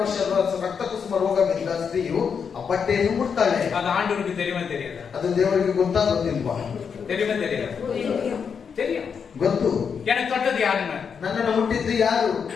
ವರ್ಷ ರಕ್ತ ಕುಸುಮ ರೋಗವಿದ್ದ ಸ್ತ್ರೀಯು ಆ ಬಟ್ಟೆಯನ್ನು ಮುಟ್ತಾಳೆ. அது ஆண்டவருக்கு தெரியுமா தெரியாதா? ಅದು ದೇವರಿಗೆ ಗೊತ್ತಾ ಗೊತ್ತಿಲ್ವಾ? தெரியுமா தெரியாதா? தெரியும். ಗೊತ್ತು. எனக்கு தொட்டது யாருன்னு? ನನ್ನನ್ನು ಮುಟ್ಟಿದ್ದು ಯಾರು?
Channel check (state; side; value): quieter; right; 6.5 dB